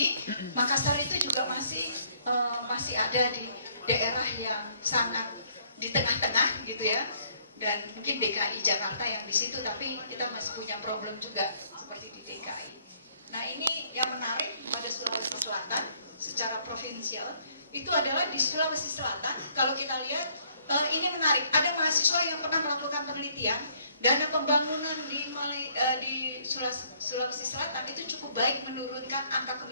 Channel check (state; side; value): inverted; both; correlation -0.64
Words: Makassar itu juga masih ada di daerah yang sangat di tengah-tengah gitu ya. Dan mungkin DKI Jakarta yang di situ, tapi kita masih punya problem juga seperti di DKI. Nah ini yang menarik pada Sulawesi Selatan secara provinsial itu adalah di Sulawesi Selatan. Kalau kita lihat ini menarik. Ada mahasiswa yang pernah melakukan penelitian, dana pembangunan di Sulawesi Selatan itu cukup baik menurunkan angka